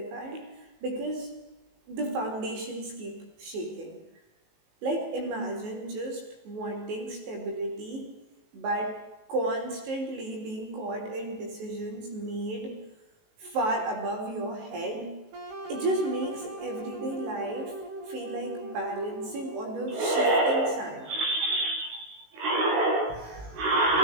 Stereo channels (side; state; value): left; late; 19 ms